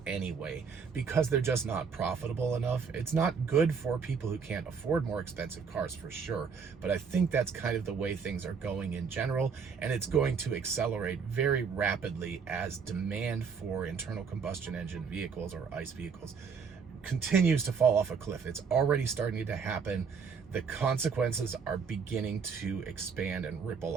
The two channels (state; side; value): quieter; left; 5.9 dB